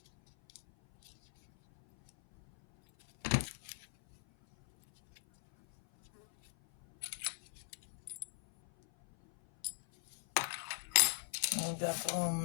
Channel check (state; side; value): silent; right; 52 dB below the other